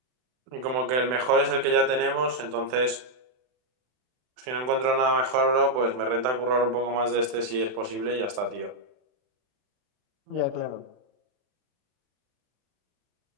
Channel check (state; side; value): late; left; 39 ms